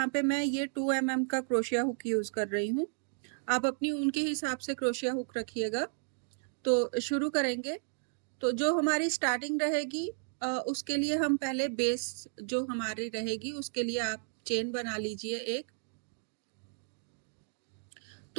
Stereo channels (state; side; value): silent; left; digital silence